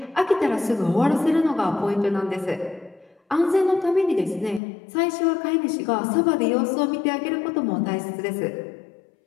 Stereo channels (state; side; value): drops out; right; at 4.6 s